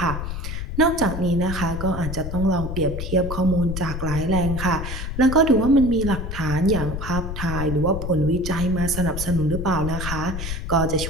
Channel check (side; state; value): left; noise; rumble, 5 dB below the sound